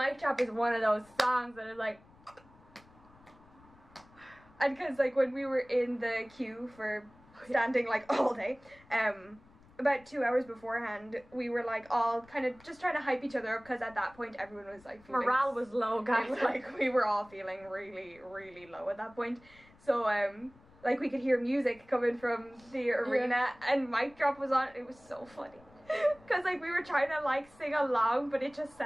drop is one of those songs that is like, and because like when we were in the queue for standing like all day, about 2 hours beforehand, we were like all kind of just trying to hype each other up, because at that point everyone was like feeling, morale was low, guys. It was like we were all feeling really, really low at that point. So like we could hear music coming from the arena, and mic drop was on. It was so funny because like we were trying to like sing along, but it just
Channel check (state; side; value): noise; left; rumble, 26 dB below the sound